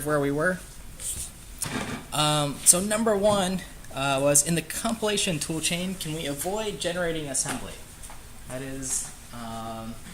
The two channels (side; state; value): both; identical; correlation 1.00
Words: where we were. So number one was in the compilation toolchain, can we avoid generating assembly? That is,